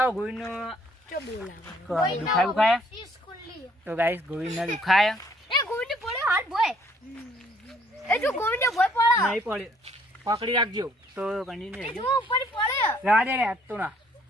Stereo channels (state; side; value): normal; both; correlation 0.63